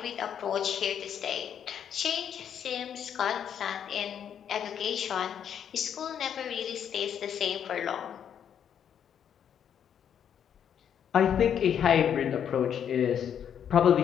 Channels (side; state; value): right; quieter; 8.7 dB